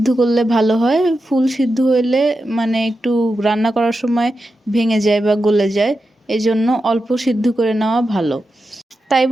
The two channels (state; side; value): normal; both; correlation 0.89